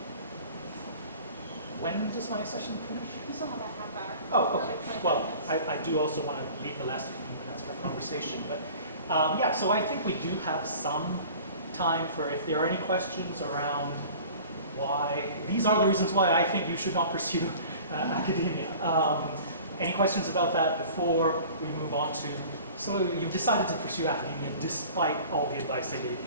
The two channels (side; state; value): both; inverted; correlation -0.44